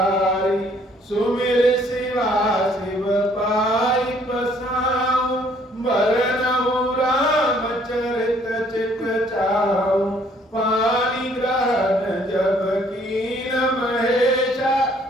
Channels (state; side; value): normal; both; correlation 0.62